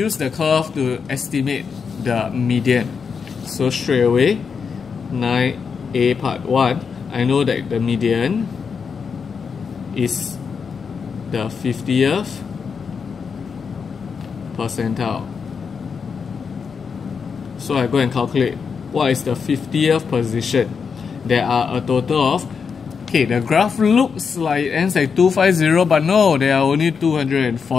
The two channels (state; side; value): quieter; right; 5.9 dB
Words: the curve to estimate the median. So straight away, 9A part 1, I know that the median is the 50th percentile. So I go and calculate what is the 50th position. There are a total of, okay, the graph looks like it ends at 250, but no, there are only